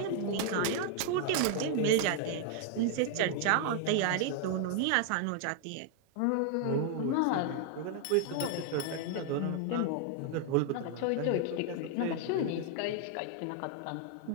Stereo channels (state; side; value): different; both; correlation 0.00